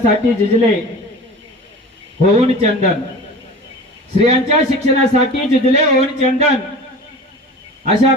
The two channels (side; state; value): both; normal; correlation 0.37